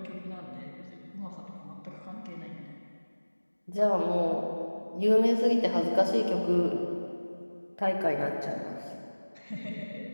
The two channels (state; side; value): inverted; both; correlation -1.00